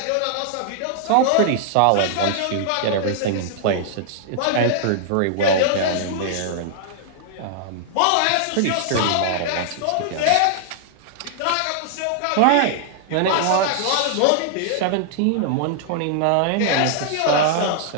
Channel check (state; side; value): different; both; correlation -0.01